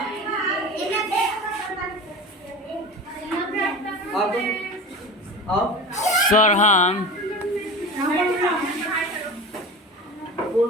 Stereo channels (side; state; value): both; normal; correlation 0.32